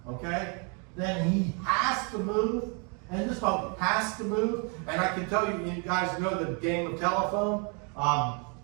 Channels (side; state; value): left; quieter; 34.9 dB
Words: Okay, then he has to move, and this boat has to move. And I can tell you, you guys know the game of telephone.